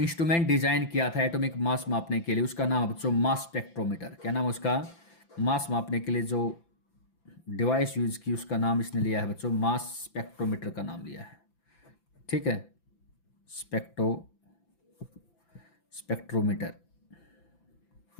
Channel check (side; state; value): right; late; 5.9 ms